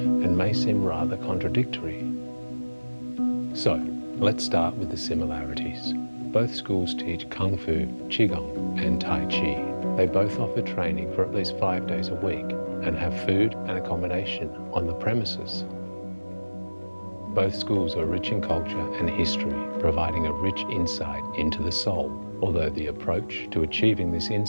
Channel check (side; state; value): both; inverted; correlation -1.00